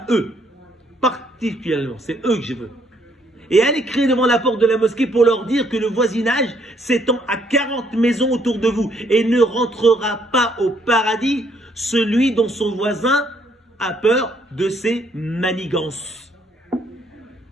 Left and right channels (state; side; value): normal; both; correlation 0.68